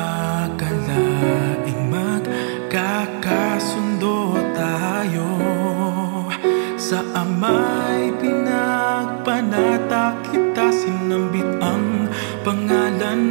magkakasundo tayo. Sa Ama'y pinagpanata kita, sinambit ang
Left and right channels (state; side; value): silent; left; 56 dB below the other